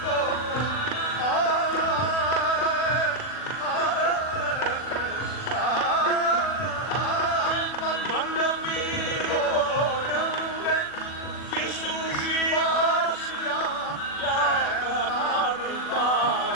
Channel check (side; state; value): right; late; 40 ms